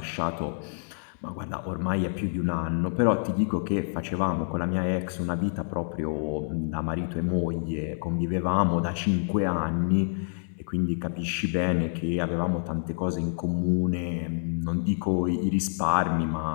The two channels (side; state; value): right; silent; digital silence